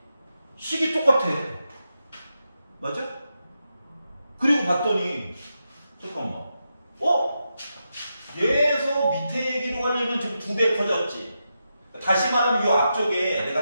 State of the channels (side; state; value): both; inverted; correlation -0.87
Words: 식이 똑같아. 맞아? 그리고 봤더니 잠깐만. 얘에서 밑에 얘기로 하려면 지금 2배 커졌지. 다시 말하면 이 앞쪽에